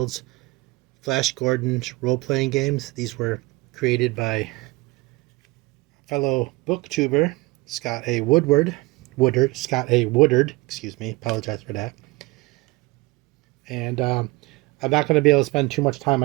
Flash Gordon's role playing games. These were created by fellow booktuber Scott A. Woodard, excuse me, apologize for that. And I'm not going to be able to spend too much time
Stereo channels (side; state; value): left; quieter; 22.9 dB